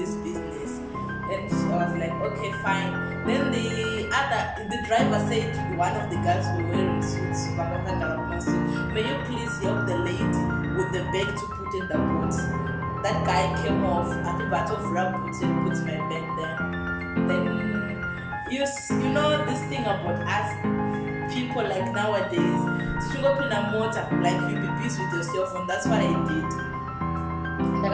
business. And I was like, okay, fine. Then the driver said to one of the guys who were wearing suits, may you please help the lady with the bag to put in the boot. That guy came off at the bottom of rug, put my bag there. Then you know this thing about us people, like nowadays, go in a motor, like you be busy with your cell phone. That's what I did. Like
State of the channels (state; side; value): identical; both; correlation 1.00